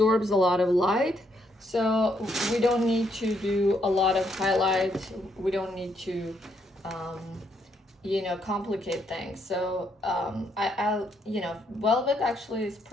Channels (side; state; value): both; normal; correlation 0.74